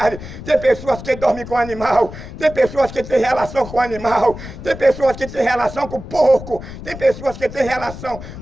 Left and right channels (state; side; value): noise; left; rumble, 12 dB below the sound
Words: Tem pessoas que dormem com o animal, tem pessoas que têm relação com o animal, tem pessoas que têm relação com o porco, tem pessoas que têm relação